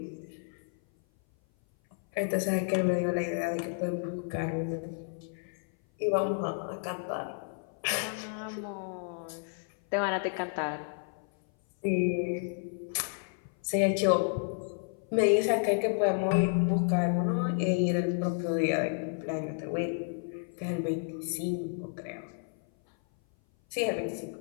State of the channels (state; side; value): silent; right; 56 dB below the other